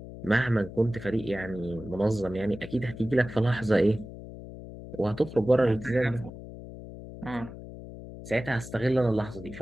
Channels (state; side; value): noise; left; hum, 13 dB below the sound